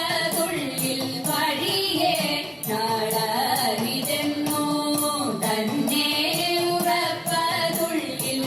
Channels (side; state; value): both; identical; correlation 1.00